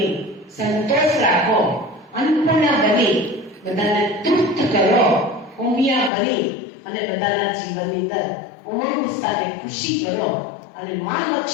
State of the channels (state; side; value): drops out; right; at 6.1 s